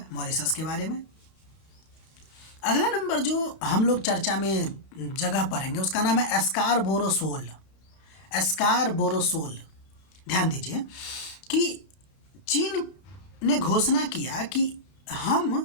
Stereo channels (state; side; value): late; right; 32 ms